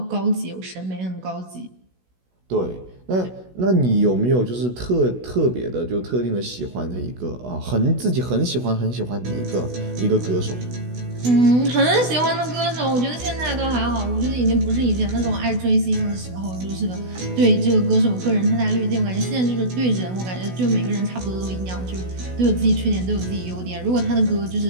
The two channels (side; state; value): left; late; 16 ms